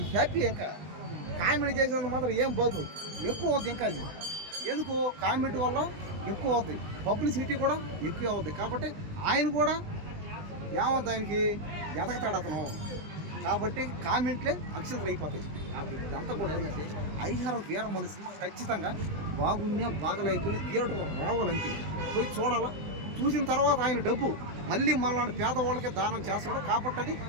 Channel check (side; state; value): left; late; 20 ms